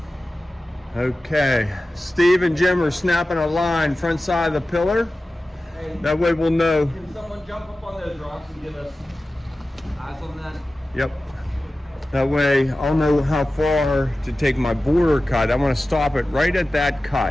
Okay, Steve and Jim are snapping a line front side of the pillar. Hey, that way we'll know. Can someone jump up on those rocks and give us eyes on that? Yep. That way I'll know how far to take my border cut. I want to stop it right at that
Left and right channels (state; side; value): normal; both; correlation 0.95